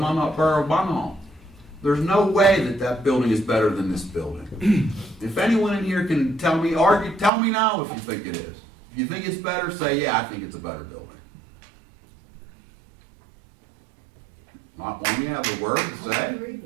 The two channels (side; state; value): left; drops out; at 7.3 s